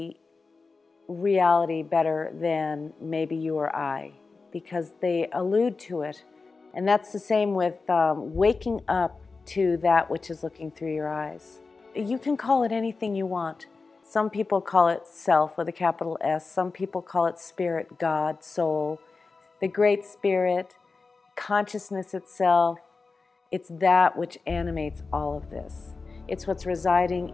reality better than maybe you or I, because they allude to it. And that's the same with waking up to that which is looking through your eyes. You can call it anything you want. Some people call it self with a capital S. Some people call it spirit, God, soul, the great spirit, consciousness itself. It's that which animates all of this. It's what's residing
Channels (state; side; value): quieter; right; 4.2 dB